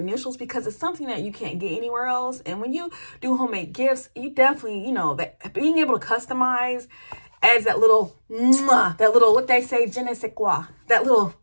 because it's something that you can't get anywhere else. And when you do homemade gifts, you definitely, you know, that being able to customize adds that little, what they say, je ne sais quoi, that little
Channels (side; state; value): both; inverted; correlation -1.00